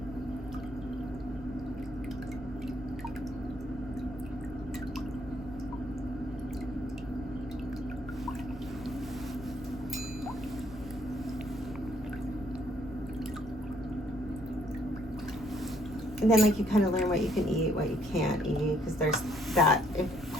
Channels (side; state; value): both; normal; correlation 0.67